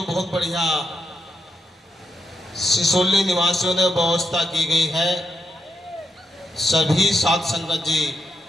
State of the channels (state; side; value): normal; both; correlation 0.83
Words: बहुत बढ़िया सिसोली निवासियों ने व्यवस्था की गई है। सभी साध संगत जी